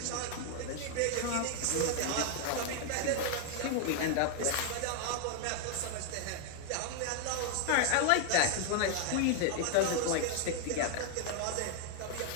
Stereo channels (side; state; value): both; different; correlation 0.00